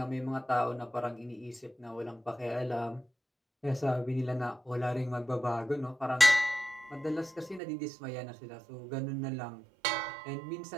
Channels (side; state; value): left; drops out; at 7.6 s